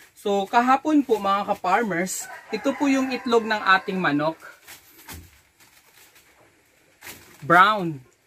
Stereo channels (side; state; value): both; identical; correlation 1.00